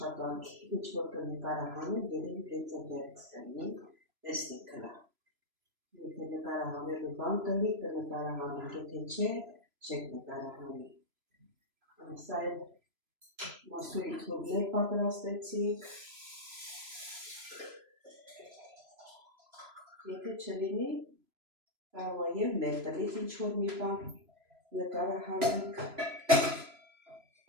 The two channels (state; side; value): late; left; 3.0 ms